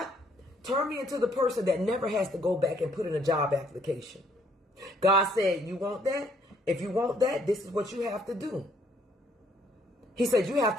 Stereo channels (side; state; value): both; normal; correlation 0.67